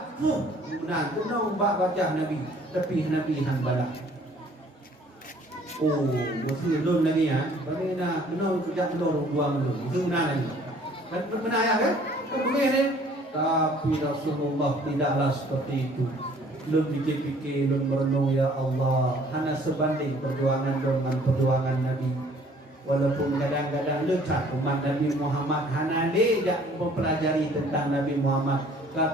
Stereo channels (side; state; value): both; normal; correlation 0.56